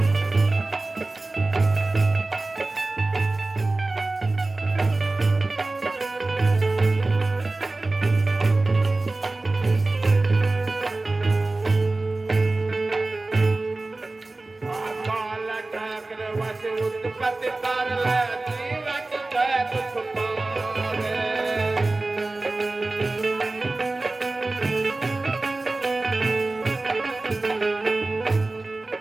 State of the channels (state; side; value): quieter; left; 3.1 dB